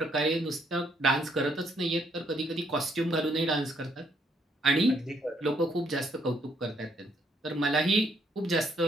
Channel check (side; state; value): both; normal; correlation 0.70